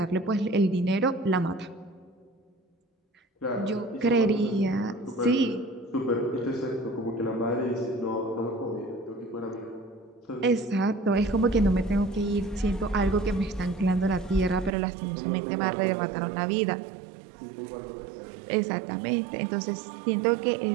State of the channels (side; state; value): left; drops out; at 14.7 s